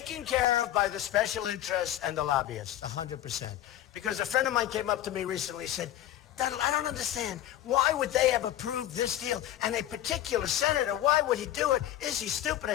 care of by the special interests and the lobbyists, 100%. Because a friend of mine came up to me recently and said, Donald, I don't understand. Why would they have approved this deal? And a particular senator, why would he do it? Is he stupid? I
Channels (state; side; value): quieter; right; 12.7 dB